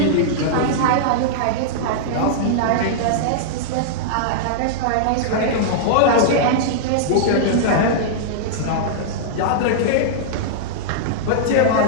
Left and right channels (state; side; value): different; both; correlation -0.03